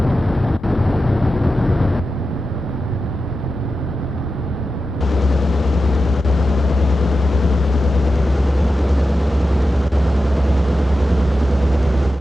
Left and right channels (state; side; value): normal; both; correlation 0.91